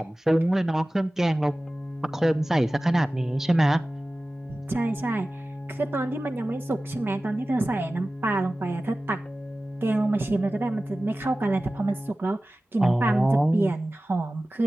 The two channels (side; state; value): both; normal; correlation 0.96